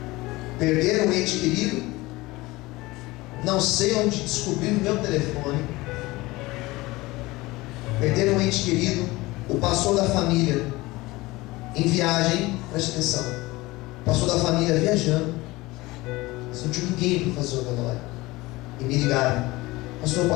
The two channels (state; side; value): quieter; right; 20.7 dB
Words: Perderam um ente querido, não sei onde descobriram o meu telefone. Perderam um ente querido, o pastor da família em viagem, preste atenção, o pastor da família viajando, não tinha ninguém para fazer o velório, e me ligaram: pastor,